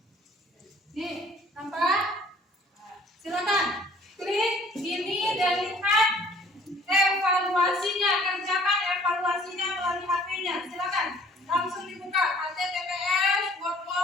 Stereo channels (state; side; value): normal; both; correlation 0.55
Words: Nih, nampak? Silakan. Klik ini dan lihat evaluasinya. Kerjakan evaluasinya melalui HP-nya. Silakan. Langsung dibuka. https